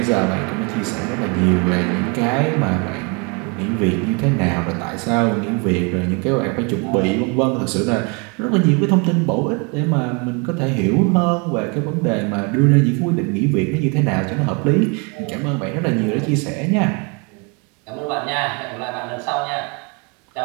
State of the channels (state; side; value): quieter; left; 32.6 dB